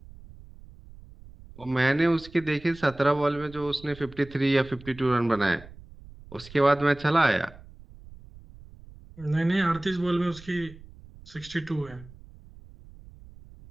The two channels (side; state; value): right; noise; rumble, 20 dB below the sound